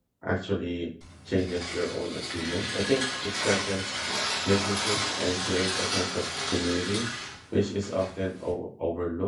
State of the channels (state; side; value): identical; both; correlation 1.00